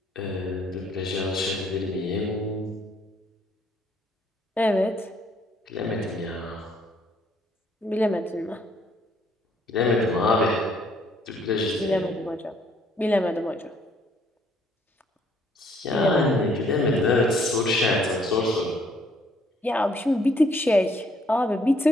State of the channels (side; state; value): both; normal; correlation 0.65